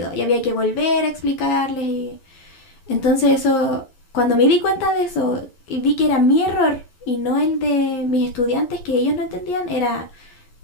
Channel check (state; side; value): late; right; 12 ms